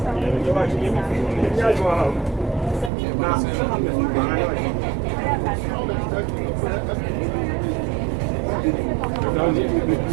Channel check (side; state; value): left; drops out; at 2.9 s